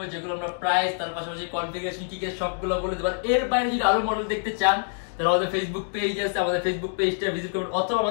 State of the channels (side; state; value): right; silent; digital silence